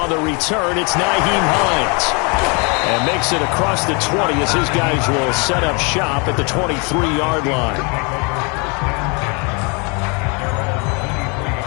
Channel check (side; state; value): right; quieter; 32.3 dB